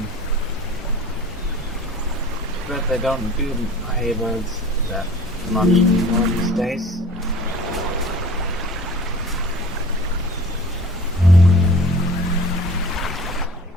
But they don't do hay bales that much anymore these days.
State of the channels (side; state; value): both; normal; correlation 0.44